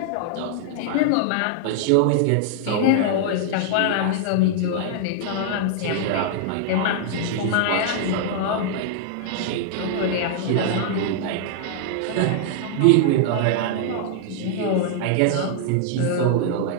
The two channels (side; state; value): both; different; correlation -0.01